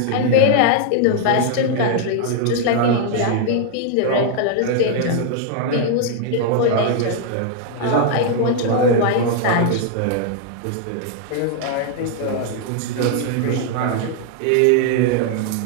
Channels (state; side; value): different; both; correlation 0.00